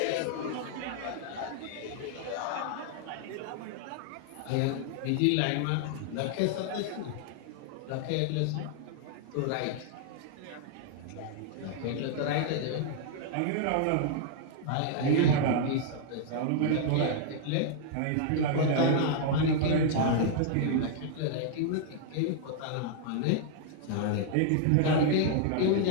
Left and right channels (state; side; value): different; both; correlation -0.01